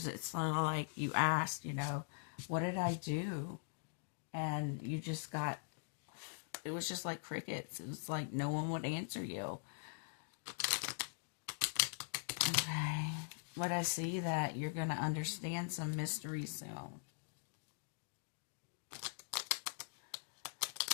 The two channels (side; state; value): right; silent; digital silence